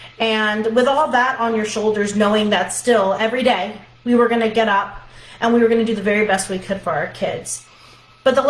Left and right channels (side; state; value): both; identical; correlation 1.00